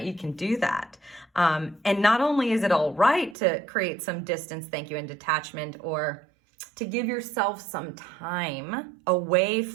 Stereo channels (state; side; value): drops out; left; at 3.4 s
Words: you can do that. And not only is it all right to create some distance, thank you, and detachment, or to give yourself some time away